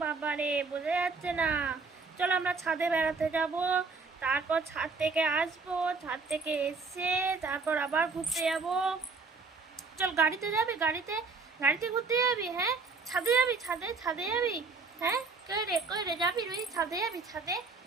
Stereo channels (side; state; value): left; quieter; 4.4 dB